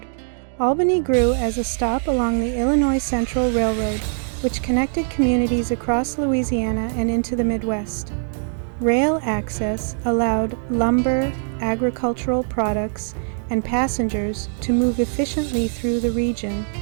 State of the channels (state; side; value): silent; left; digital silence